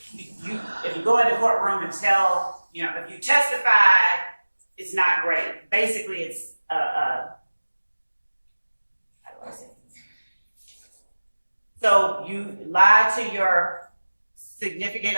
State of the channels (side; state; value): both; inverted; correlation -1.00